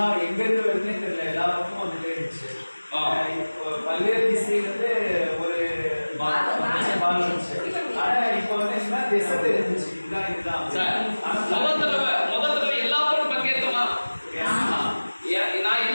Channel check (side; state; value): both; inverted; correlation -1.00